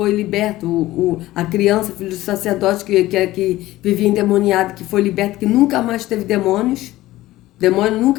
liberto, a criança, filho do sacerdote que vivia endemoniado, que foi liberto, que nunca mais teve demônios. Demônio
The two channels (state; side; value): quieter; right; 16.6 dB